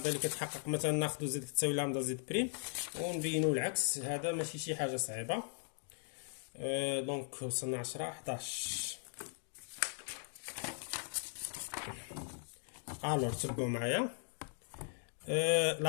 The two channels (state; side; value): silent; right; 52 dB below the other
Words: اللي كتحقق مثلا ناخذ زد كتساوي لامدا زد بريم ونبينو العكس. هذا ماشي شي حاجه صعيبه. دونك وصلنا 10 11. الوغ تبعوا معايا.